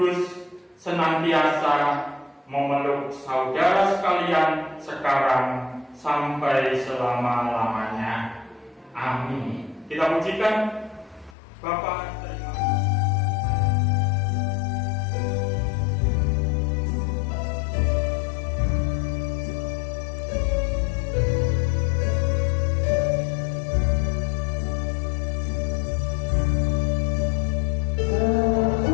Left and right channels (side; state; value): right; drops out; at 11.4 s